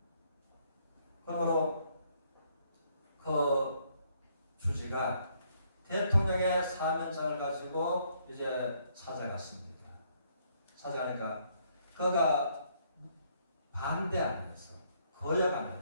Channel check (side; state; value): both; inverted; correlation -0.69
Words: 그러므로 그 주지가 대통령의 사면장을 가지고 이제 찾아갔습니다. 찾아가니까 그가 반대 안 해서 거역 안